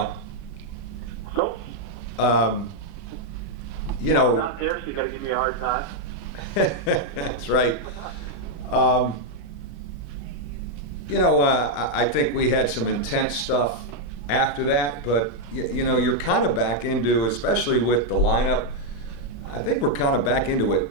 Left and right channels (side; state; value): right; late; 31 ms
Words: Nope. You I'm know. not there, so you got to give me a hard time. That's right. You know, I think we had some intense stuff after that, but you know, you're kind of back into, especially with the lineup, I think we're kind of back into a